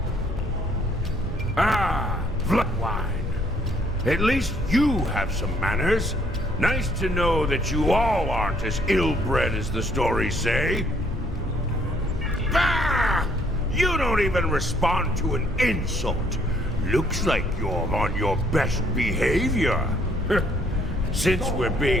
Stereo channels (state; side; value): normal; both; correlation 0.65